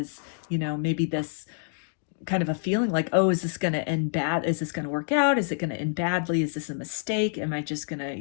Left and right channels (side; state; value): right; silent; digital silence